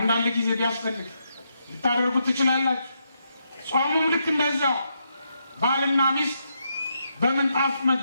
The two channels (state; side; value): inverted; both; correlation -0.80